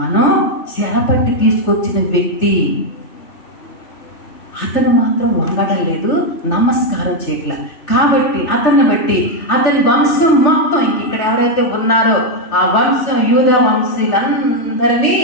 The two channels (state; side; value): late; right; 3.3 ms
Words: చెరపట్టి తీసుకొచ్చిన వ్యక్తి. అతను మాత్రం వంగడం లేదు, నమస్కారం చేయట్లా. కాబట్టి అతన్ని బట్టి అతని వంశం మొత్తం ఇక్కడ ఎవరైతే ఉన్నారో ఆ వంశం, యూదా వంశీయులందరినీ